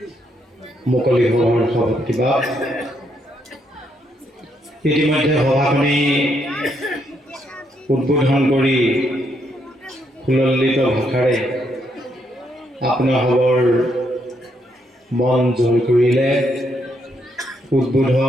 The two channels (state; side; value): normal; both; correlation 0.76